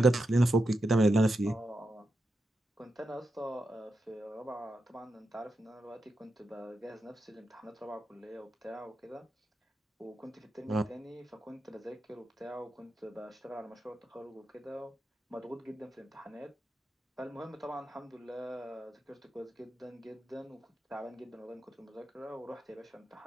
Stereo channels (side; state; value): both; normal; correlation 0.87